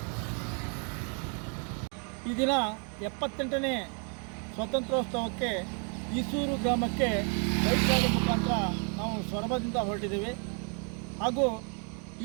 ಈ ದಿನ 78ನೇ ಸ್ವಾತಂತ್ರ್ಯೋತ್ಸವಕ್ಕೆ ಈಸೂರು ಗ್ರಾಮಕ್ಕೆ ಬೈಕ್ ರ್ಯಾಲಿ ಮುಖಾಂತರ ನಾವು ಸೊರಬದಿಂದ ಹೊರಟಿದ್ದೇವೆ. ಹಾಗೂ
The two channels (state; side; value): quieter; left; 39.6 dB